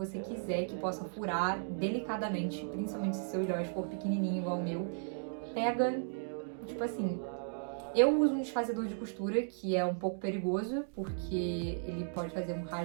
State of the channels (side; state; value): left; silent; digital silence